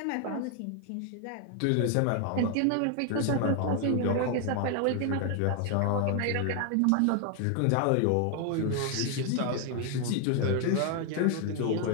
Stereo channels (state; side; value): different; both; correlation 0.00